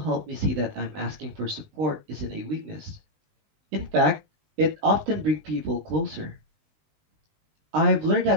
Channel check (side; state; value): left; late; 20 ms